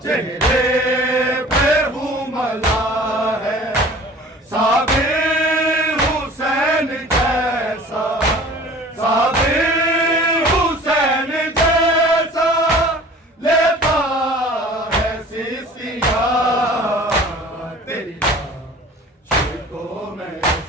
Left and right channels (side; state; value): both; normal; correlation 0.45